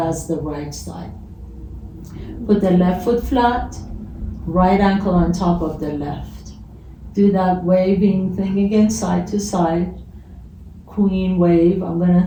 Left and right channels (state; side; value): identical; both; correlation 1.00